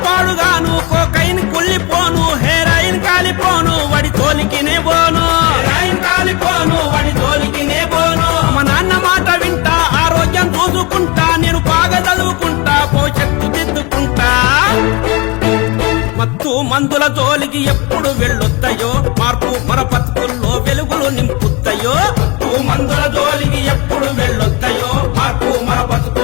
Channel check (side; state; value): right; quieter; 26.5 dB